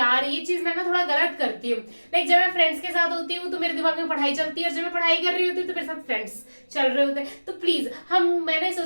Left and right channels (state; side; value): inverted; both; correlation -1.00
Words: ये चीज मैं ना थोड़ा गलत करती हूँ। लाइक जब मैं फ्रेंड्स के साथ होती हूँ तो मेरे दिमाग में पढ़ाई चलती है, और जब मैं पढ़ाई कर रही होती हूँ तो मेरे साथ फ्रेंड्स चल रहे होते हैं। तो प्लीज मैंने